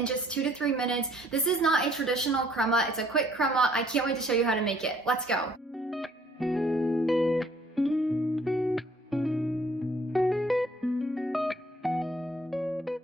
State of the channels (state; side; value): normal; both; correlation 0.61